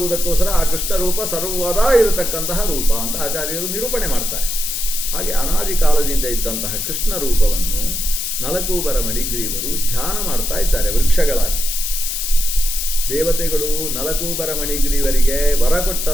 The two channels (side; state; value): left; noise; hiss, 3 dB below the sound